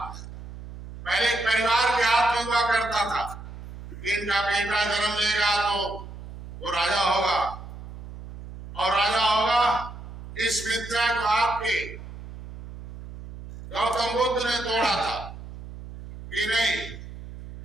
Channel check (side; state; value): right; noise; hum, 13 dB below the sound